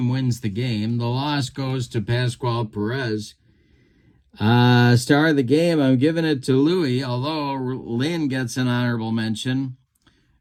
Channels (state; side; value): identical; both; correlation 1.00